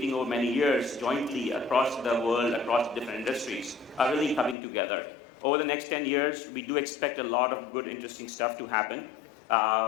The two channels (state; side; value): drops out; right; at 4.5 s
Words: over many years jointly across the world, across different industries, are really coming together. Over the next 10 years, we do expect a lot of good, interesting stuff to happen.